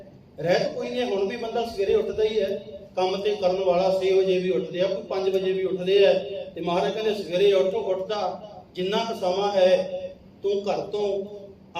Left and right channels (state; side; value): identical; both; correlation 1.00